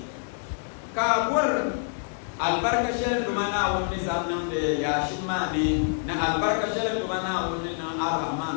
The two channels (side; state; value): right; silent; digital silence